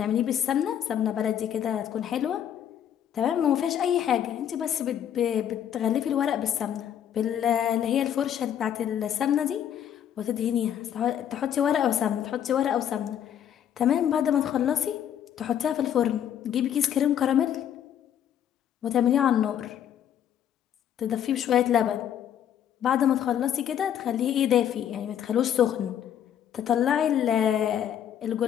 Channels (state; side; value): quieter; right; 9.8 dB